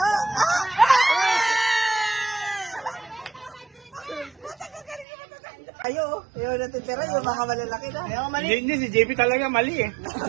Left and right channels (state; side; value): drops out; left; at 5.1 s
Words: Ayaw natitira yung mga malalaki na. Hindi, si JP talaga mali eh.